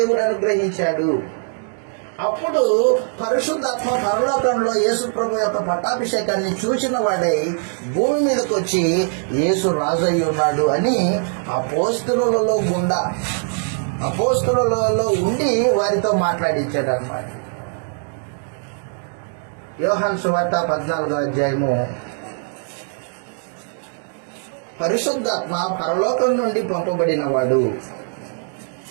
అనుగ్రహించాడు. అప్పుడు పరిశుద్ధాత్మ పరలోకంలో యేసు ప్రభు యొక్క పట్టాభిషేకాన్ని చూసిన వాడై భూమి మీదకి వచ్చి యేసు రాజు అయి ఉన్నాడు అని అపోస్తలులలో ఉండి వారితో మాట్లాడించాడు అన్నమాట. యోహాను సువార్త 14వ అధ్యాయము. పరిశుద్ధాత్మ పరలోకం నుండి పంపబడిన వాడు.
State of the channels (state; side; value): silent; left; digital silence